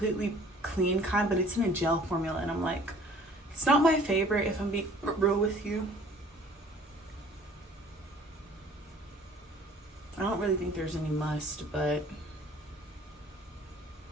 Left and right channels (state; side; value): normal; both; correlation 0.52